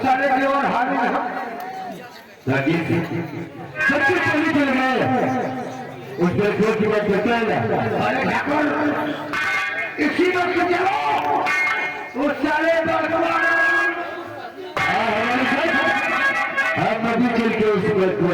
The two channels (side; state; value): both; identical; correlation 1.00